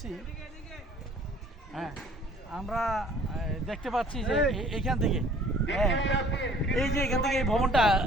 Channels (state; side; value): normal; both; correlation 0.54